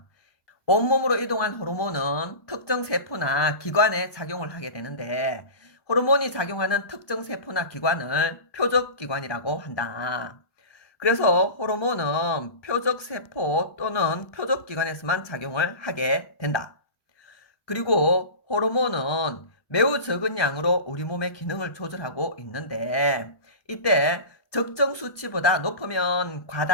온몸으로 이동한 호르몬은 특정 세포나 기관에 작용을 하게 되는데, 호르몬이 작용하는 특정 세포나 기관을 표적기관이라고 한다. 그래서 호르몬은 표적세포 또는 표적기관에서만 작용을 하게 된다. 그리고 호르몬은 매우 적은 양으로 우리 몸의 기능을 조절하고 있는데, 이때 적정 수치보다 높으면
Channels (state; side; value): late; right; 1.2 ms